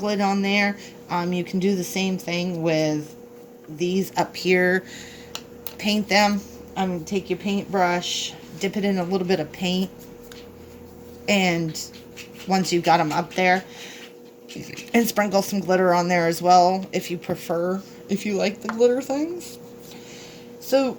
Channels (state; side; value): identical; both; correlation 1.00